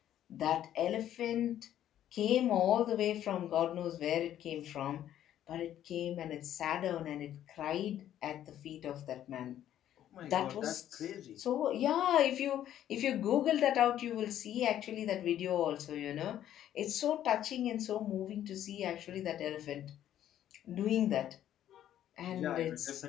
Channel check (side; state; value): right; quieter; 11.4 dB